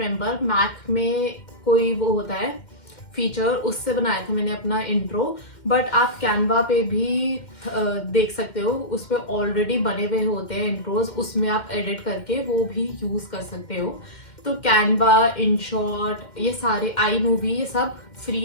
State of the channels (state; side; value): late; right; 2.1 ms